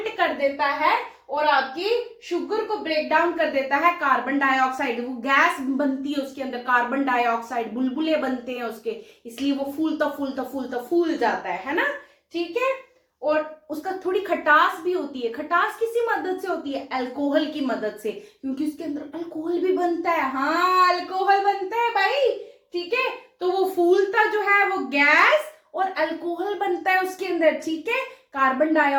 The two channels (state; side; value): identical; both; correlation 1.00